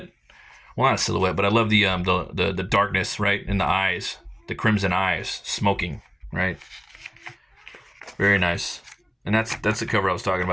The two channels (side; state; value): both; identical; correlation 1.00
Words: Well, not a silhouette, but I love the darkness right in the eyes, the crimson eyes, smoking, right? Very nice. And that's the cover I was talking